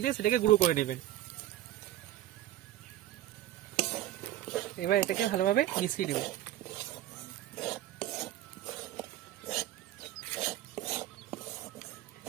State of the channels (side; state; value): left; quieter; 13.5 dB